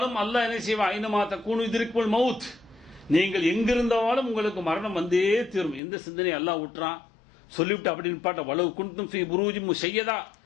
அல்லாஹ் என்ன செய்வான்? ஐனமா தக்கூனு யுத்ரிக்குல் மவுத். நீங்கள் எங்கிருந்தாலும் உங்களுக்கு மரணம் வந்தே தீரும். எந்த சிந்தனை அல்லாஹ் விட்டுறான் சொல்லிவிட்டு அப்படி நிப்பாட்ட வலவு குன்தும் ஃபீ புரூஜின் முஷய்யதா,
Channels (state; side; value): drops out; right; at 5.8 s